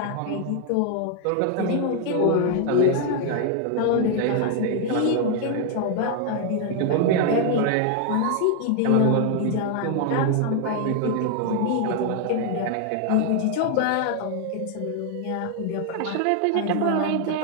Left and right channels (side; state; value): both; different; correlation 0.00